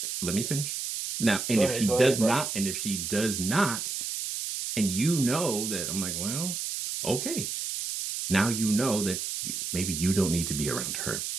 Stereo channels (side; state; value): right; noise; hiss, 4 dB below the sound